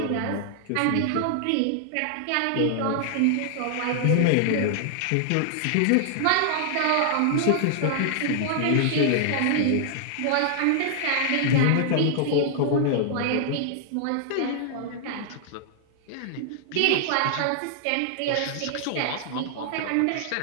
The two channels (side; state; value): both; different; correlation -0.01